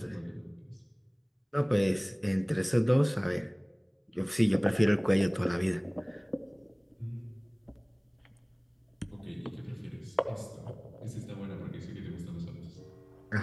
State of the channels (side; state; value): both; identical; correlation 1.00